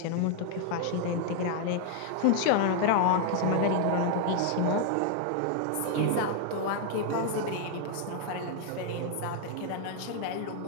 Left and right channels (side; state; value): both; different; correlation 0.00